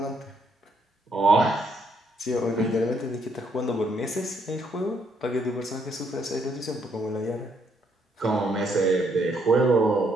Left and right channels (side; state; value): both; normal; correlation 0.72